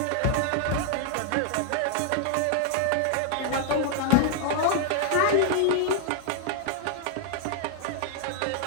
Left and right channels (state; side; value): different; both; correlation 0.00